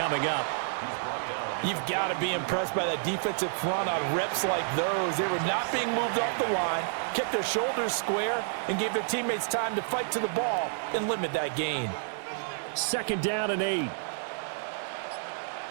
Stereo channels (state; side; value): silent; left; digital silence